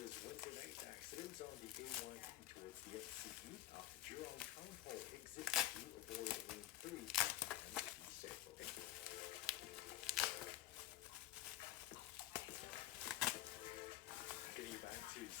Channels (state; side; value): quieter; right; 13.8 dB